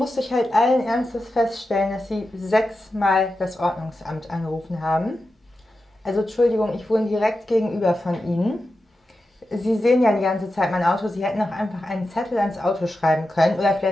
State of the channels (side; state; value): both; normal; correlation 0.91